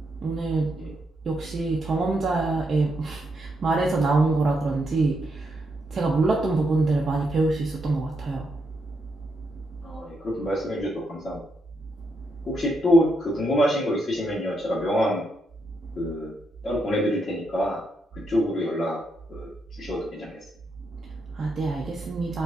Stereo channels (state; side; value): normal; both; correlation 0.80